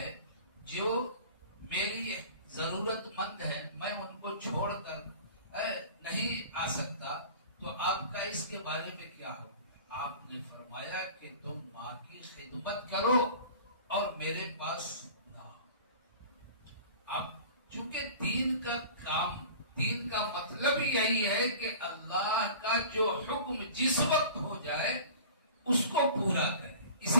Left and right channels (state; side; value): inverted; both; correlation -0.41